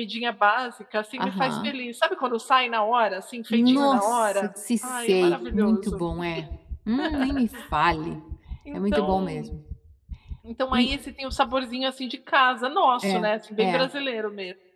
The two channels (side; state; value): both; identical; correlation 1.00